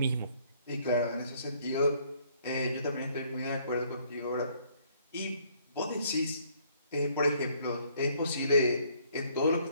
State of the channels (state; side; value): inverted; both; correlation -0.64